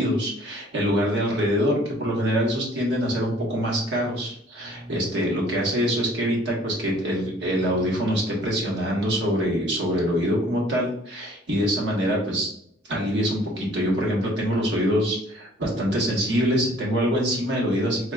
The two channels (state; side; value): normal; both; correlation 0.55